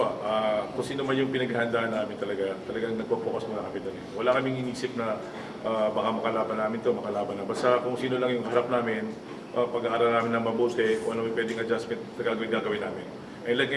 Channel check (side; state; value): both; identical; correlation 1.00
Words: kung sino man yung pinaghahandaan namin talagang nagpo-focus muna kami doon. Wala kaming inisip na baka makalaban namin to, makalaban na. Basta kung sino lang yung harap namin, pag-aaral namin na mabuti, kung ano yung pwedeng adjustment na gagawin namin. And like